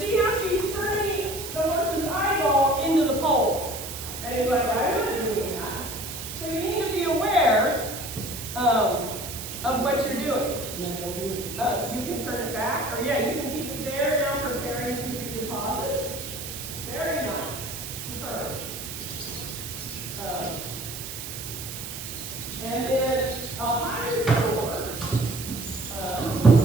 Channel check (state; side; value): noise; right; hiss, 8 dB below the sound